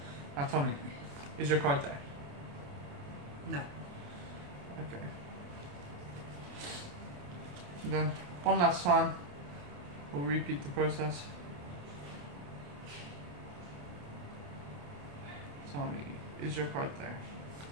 Now tell me, is your card there? No. Okay. And then, one last time, we'll repeat the process. Tell me, is your card there?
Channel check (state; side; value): late; left; 28 ms